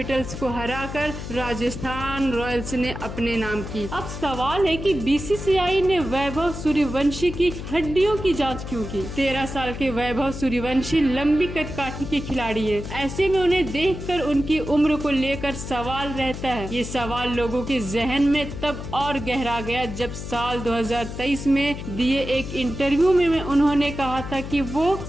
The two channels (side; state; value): left; noise; hum, 8 dB below the sound